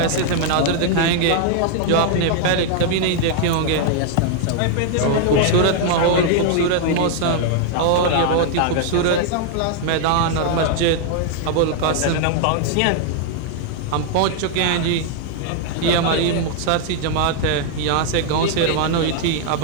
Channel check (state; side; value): different; both; correlation 0.00